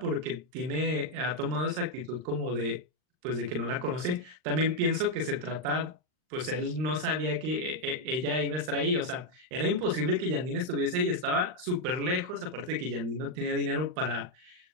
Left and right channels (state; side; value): late; left; 39 ms